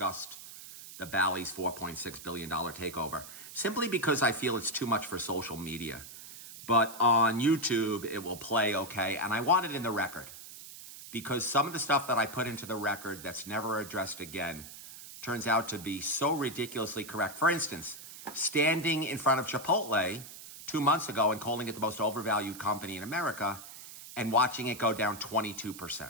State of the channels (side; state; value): right; noise; hiss, 14 dB below the sound